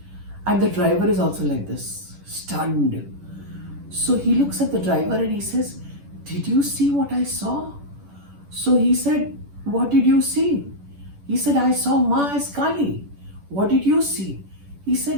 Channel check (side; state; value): left; late; 10 ms